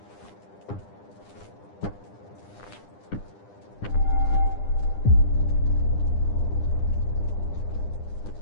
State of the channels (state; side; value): late; right; 9.9 ms